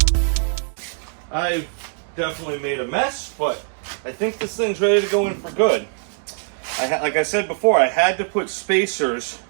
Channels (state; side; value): silent; left; 57 dB below the other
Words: I've definitely made a mess, but I think this thing's ready to go in for good. Like I said before, I had to put spacers